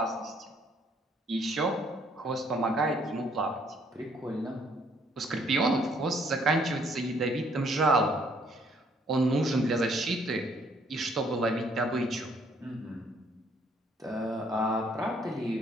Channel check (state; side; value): normal; both; correlation 0.65